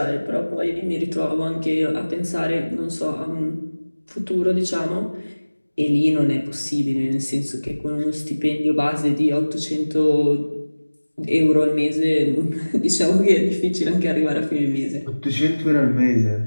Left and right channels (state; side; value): inverted; both; correlation -1.00